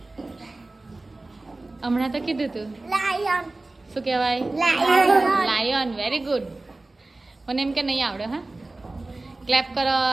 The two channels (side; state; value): left; quieter; 3.0 dB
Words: હમણાં તો કીધું તું. લાયન. શું કહેવાય? લાયન. Very good. મને એમ કે નહીં આવડે. હા, ક્લેપ કરો.